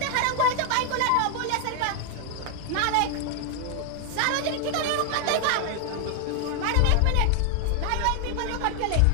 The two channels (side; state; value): both; different; correlation 0.00